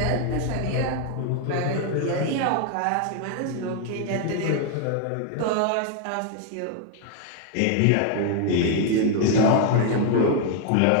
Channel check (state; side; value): different; both; correlation 0.00